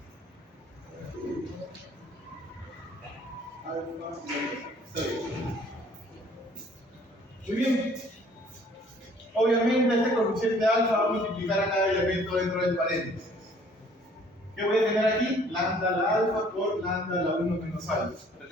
Alfa y 6. Muy bien. Obviamente este coeficiente alfa va a multiplicar a cada elemento dentro del paréntesis. ¿Qué voy a tener aquí? Lambda la alfa por lambda la 1 menos alfa.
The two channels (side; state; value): both; normal; correlation 0.57